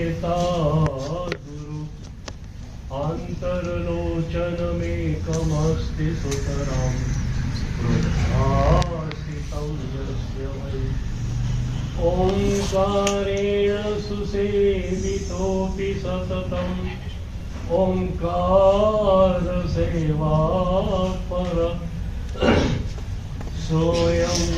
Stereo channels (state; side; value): identical; both; correlation 1.00